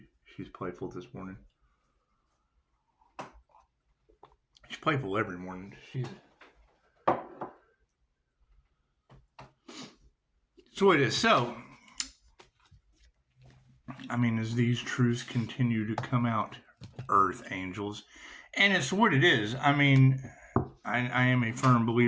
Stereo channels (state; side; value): identical; both; correlation 1.00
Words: She's playful this morning. She's playful every morning. So it is. So, I mean, as these truths continue to come out, Earth angels, and it's what it is. I mean, I am a firm